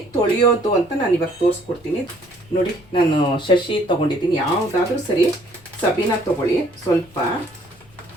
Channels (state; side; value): noise; left; rumble, 27 dB below the sound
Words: ತೊಳೆಯೋದು ಅಂತ ನಾನು ಇವಾಗ ತೋರಿಸ್ಕೊಡ್ತೀನಿ. ನೋಡಿ, ನಾನು ಶಶಿ ತೊಗೊಂಡಿದ್ದೀನಿ. ಯಾವುದಾದ್ರೂ ಸರಿ, ಸಬೀನ ತೊಗೊಳ್ಳಿ. ಸ್ವಲ್ಪ